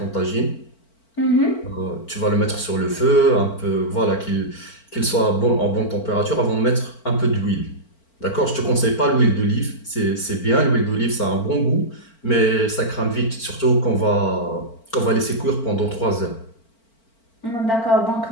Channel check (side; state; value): right; late; 4.4 ms